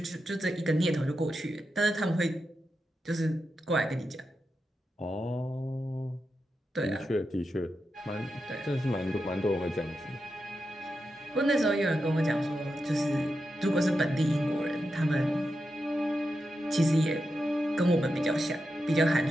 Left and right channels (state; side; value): normal; both; correlation 0.88